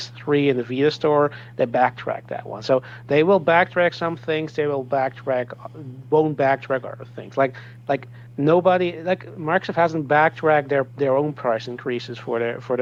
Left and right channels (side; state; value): both; identical; correlation 1.00